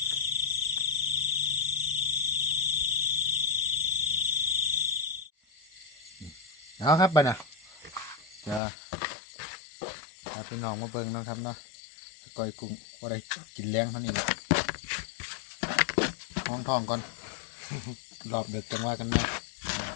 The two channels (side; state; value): right; drops out; at 8.6 s